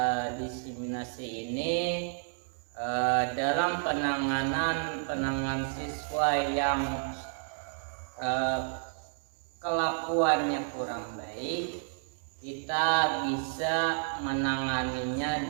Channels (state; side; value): silent; left; 57 dB below the other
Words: diseminasi ini, dalam penanganan siswa yang kelakuannya kurang baik, kita bisa menanganinya